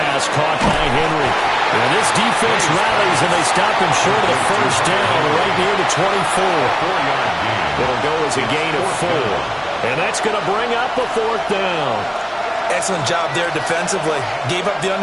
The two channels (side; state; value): both; identical; correlation 1.00